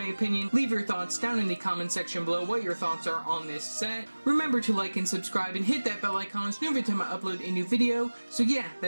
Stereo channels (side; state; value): both; inverted; correlation -1.00